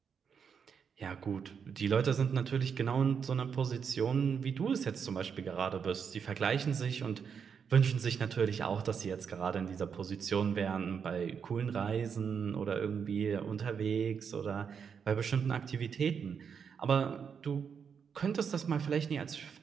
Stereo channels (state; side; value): quieter; left; 6.8 dB